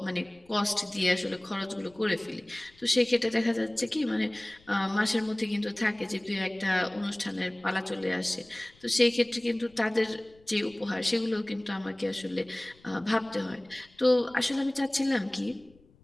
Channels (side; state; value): left; noise; rumble, 29 dB below the sound